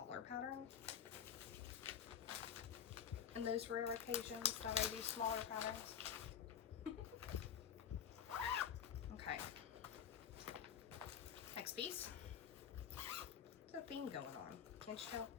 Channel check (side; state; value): right; quieter; 8.4 dB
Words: pattern. In those rare occasions that I do smaller patterns. Okay. Next piece. There's a theme going on. Can't you tell?